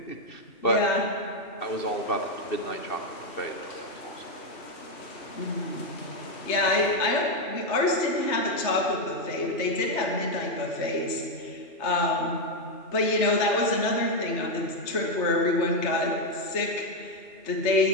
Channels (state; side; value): late; right; 3.2 ms